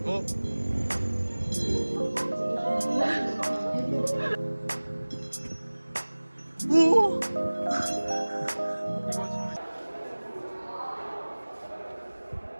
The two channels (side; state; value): both; inverted; correlation -1.00